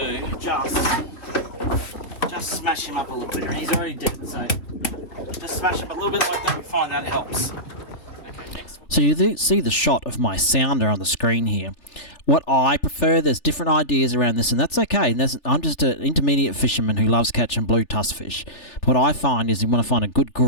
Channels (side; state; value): right; late; 3.4 ms